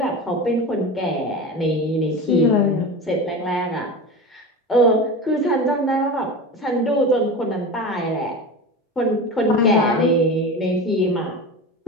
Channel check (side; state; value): both; normal; correlation 0.28